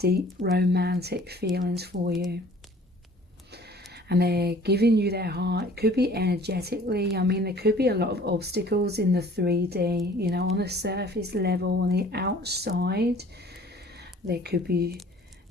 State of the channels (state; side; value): normal; both; correlation 0.51